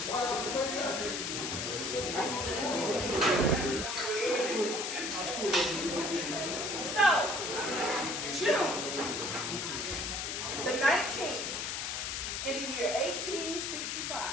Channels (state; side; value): noise; left; hiss, 2 dB below the sound